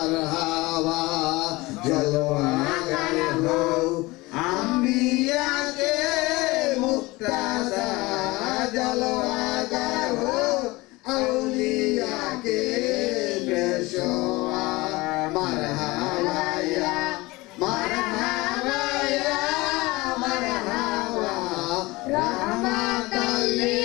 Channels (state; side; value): quieter; right; 21.8 dB